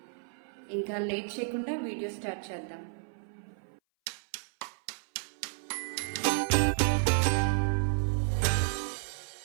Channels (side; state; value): left; silent; 56 dB below the other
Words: ఇంకా లేట్ చేయకుండా వీడియో స్టార్ట్ చేద్దాం.